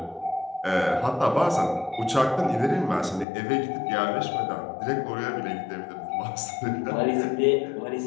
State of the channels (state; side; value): drops out; right; at 3.2 s